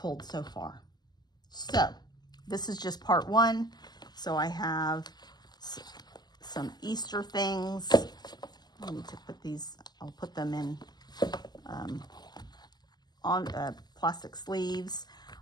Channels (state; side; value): late; right; 0.20 ms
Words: so far. So this is just part 1. So I have some Easter things. I need to put these, I'll put them in on plastic sleeves.